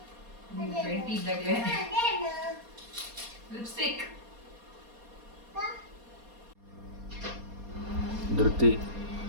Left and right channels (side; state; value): left; late; 4.2 ms